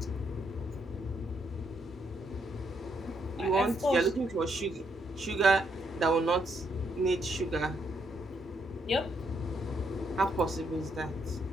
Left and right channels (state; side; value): normal; both; correlation 0.76